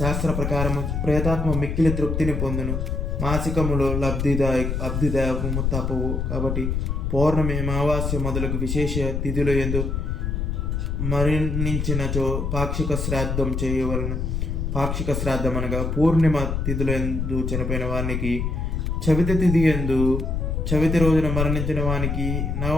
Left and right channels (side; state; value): left; noise; rumble, 1 dB below the sound